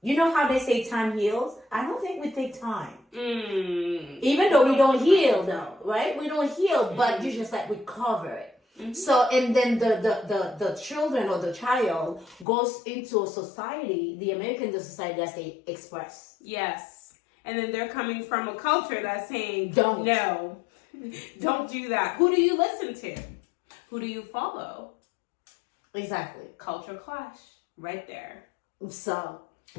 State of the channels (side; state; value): right; drops out; at 12.5 s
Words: how they say time heals? I don't think we take time. Even though we don't heal, though, right? We don't heal, but you just like we cover it. So, and then the children or the child goes into a society, the American society that they express. Yes. And then they're coming from a culture that's saying, don't do that. Who do you listen to? Who do you follow? Exactly. Culture clash right there. So,